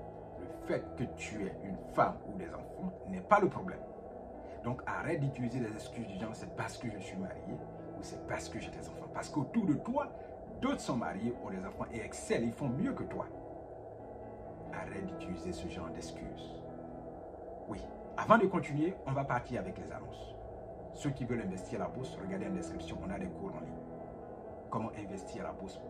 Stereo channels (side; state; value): both; identical; correlation 1.00